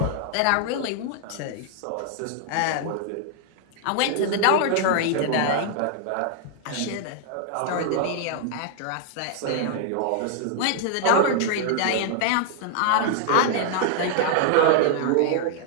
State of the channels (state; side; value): different; both; correlation -0.01